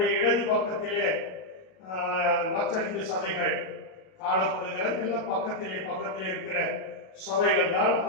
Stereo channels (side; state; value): right; late; 37 ms